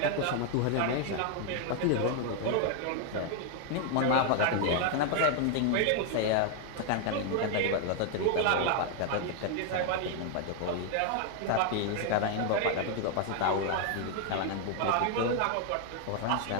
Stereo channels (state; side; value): different; both; correlation 0.00